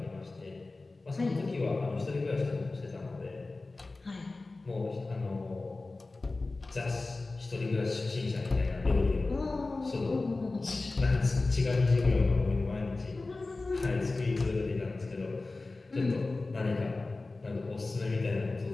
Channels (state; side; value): quieter; right; 3.4 dB